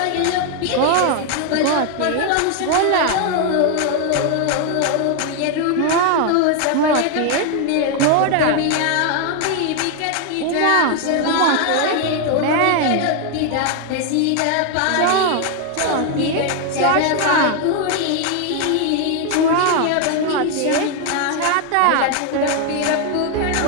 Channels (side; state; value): both; different; correlation 0.01